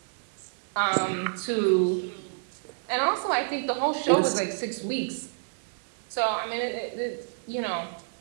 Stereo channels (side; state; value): left; silent; digital silence